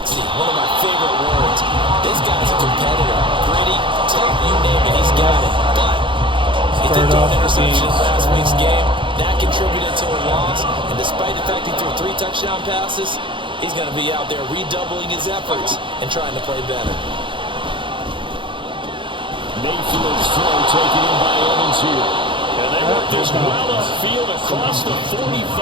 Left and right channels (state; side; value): late; left; 0.24 ms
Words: One of my favorite words. This guy's a competitor. Gritty, tough, you name it, he's got it. But he did throw an interception in last week's game. That contributed to a loss. And despite the fact he threw 3 touchdown passes, he's going to be out there redoubling his efforts and trying to play better. Mayfield's throw taken in by Evans here. And they work this well upfield across the